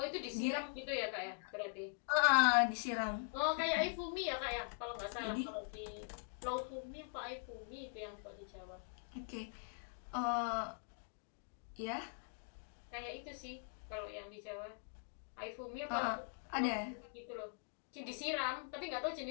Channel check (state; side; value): quieter; right; 39.9 dB